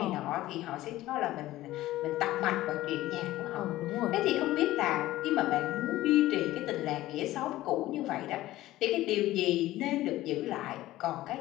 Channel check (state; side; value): quieter; right; 15.9 dB